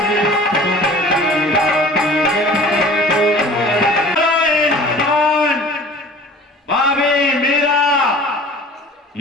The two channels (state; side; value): normal; both; correlation 0.45